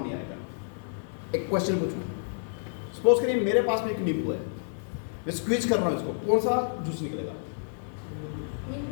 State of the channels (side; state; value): right; silent; digital silence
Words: नहीं आएगा। एक क्वेश्चन पूछूं, सपोज करिए मेरे पास में एक नींबू है, मैं स्क्वीज कर रहा हूं इसको, कौन सा जूस निकलेगा?